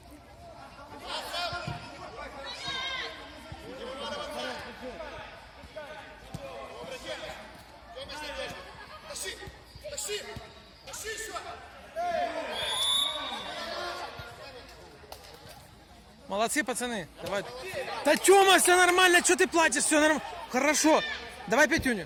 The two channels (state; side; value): identical; both; correlation 1.00